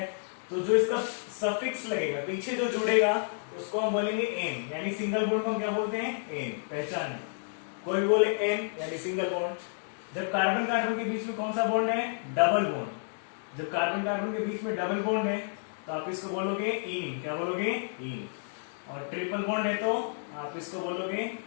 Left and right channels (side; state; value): right; silent; digital silence